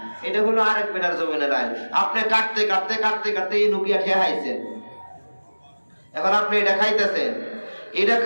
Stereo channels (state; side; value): inverted; both; correlation -1.00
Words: এটা হলো আরেক বেটার জমিনের আইল। আপনি কাটতে কাটতে কাটতে কাটতে এই নুকিয়া খেয়ে হাইছেন, এখন আপনি এটা খাইতেছেন। এটা